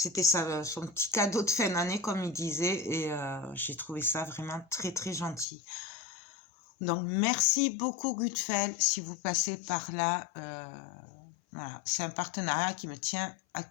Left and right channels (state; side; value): drops out; right; at 5.5 s